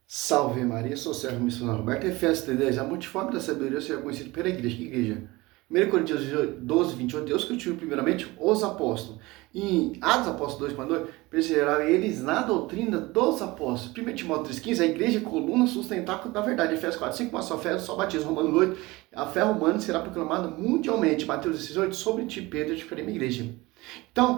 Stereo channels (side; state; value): left; quieter; 21.4 dB